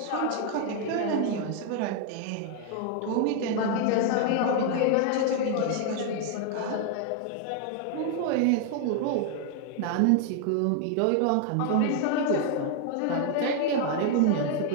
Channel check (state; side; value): different; both; correlation 0.00